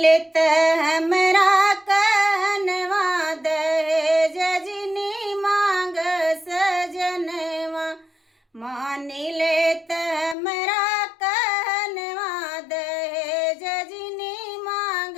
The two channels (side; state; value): right; drops out; at 10.4 s